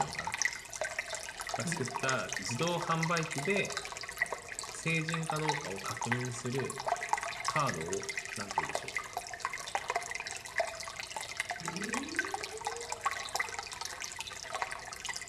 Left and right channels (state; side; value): identical; both; correlation 1.00